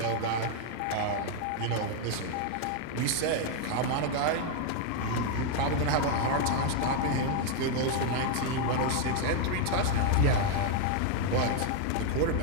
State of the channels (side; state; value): both; different; correlation 0.00